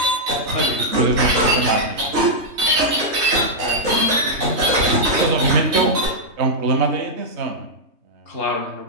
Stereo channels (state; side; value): late; left; 3.2 ms